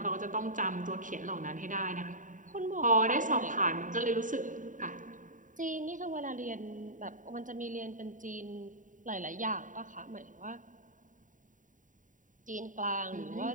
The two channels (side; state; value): left; late; 0.38 ms